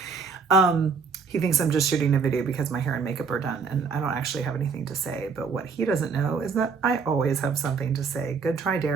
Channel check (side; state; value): left; quieter; 5.3 dB